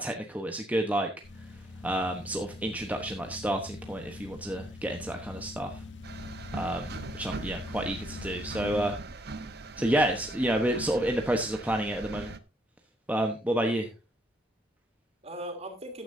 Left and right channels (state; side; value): normal; both; correlation 0.70